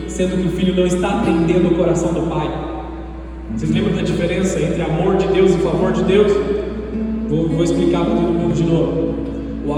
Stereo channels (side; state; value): both; identical; correlation 1.00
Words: sendo que o filho não está atendendo o coração do pai? Vocês lembram da diferença entre amor de Deus e favor de Deus? Vou explicar para todo mundo de novo. O